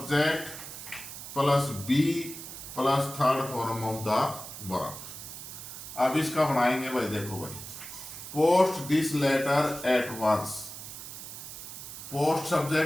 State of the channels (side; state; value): right; noise; hiss, 11 dB below the sound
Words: plus be plus third form of the verb. अब इसका बनाएंगे भाई, देखो भाई, post this letter at once. Post